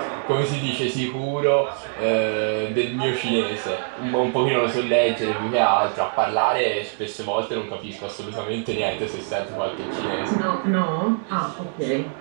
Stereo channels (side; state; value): left; silent; 63 dB below the other